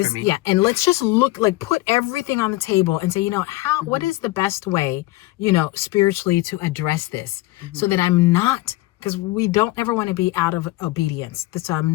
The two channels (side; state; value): right; quieter; 18.7 dB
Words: me. Yeah, and let's just put everything on the table and say, what is the best way, spiritually to address this, so that I'm not, because we don't ever want to be out of obedience. So I'm